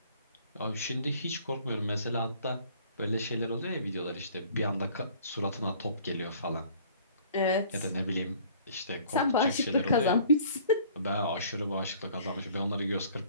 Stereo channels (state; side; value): inverted; both; correlation -0.53